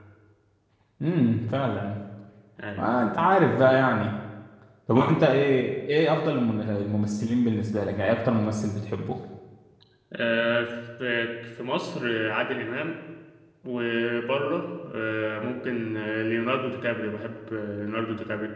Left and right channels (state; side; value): identical; both; correlation 1.00